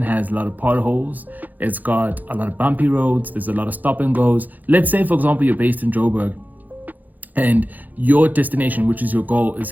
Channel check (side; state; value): left; late; 0.083 ms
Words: has a lot of potholes. It's got a lot of bumpy roads. There's a lot of stop and goes. Let's say, for example, you're based in Joburg and your destination, which is your goal, is